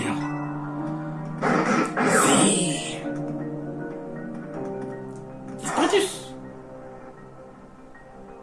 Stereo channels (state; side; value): identical; both; correlation 1.00